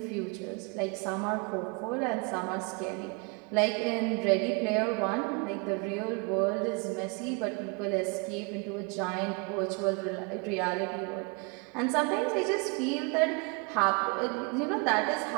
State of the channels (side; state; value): left; quieter; 32.6 dB